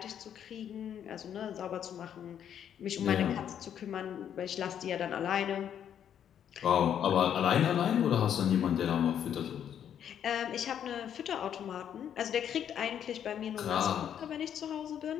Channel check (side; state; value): right; quieter; 9.3 dB